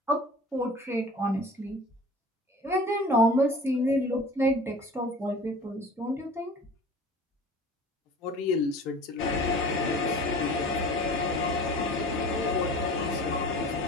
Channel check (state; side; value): normal; both; correlation 0.42